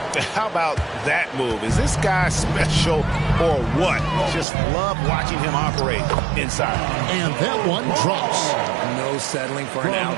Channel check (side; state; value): left; drops out; at 4.5 s